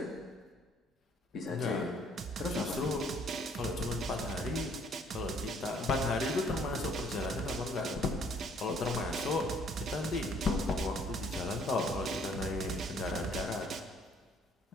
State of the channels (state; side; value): normal; both; correlation 0.61